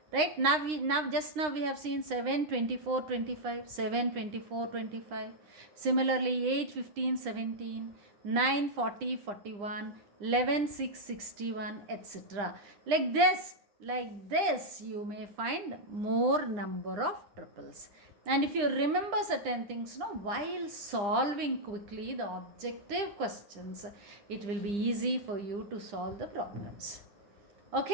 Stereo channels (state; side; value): late; left; 9.9 ms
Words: Right? Now we have seen 7, 24, 25. 7, 24, 25. Similarly 8, 15, 17. 9, 40, 41. 11, 6, 61, etc. Like this you may find more number of triples. And if you remember certain things, while solving quickly the objective questions, it will be easy for you to solve the problems.